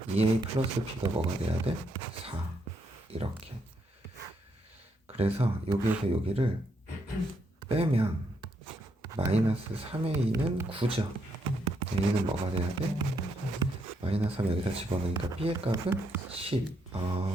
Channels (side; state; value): both; normal; correlation 0.76